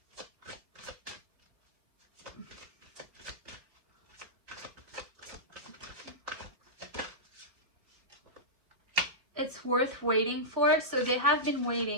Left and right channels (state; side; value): late; left; 4.0 ms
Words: It's worth waiting for. So they have been